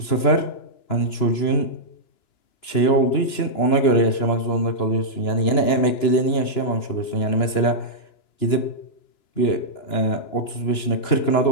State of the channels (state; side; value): late; right; 2.9 ms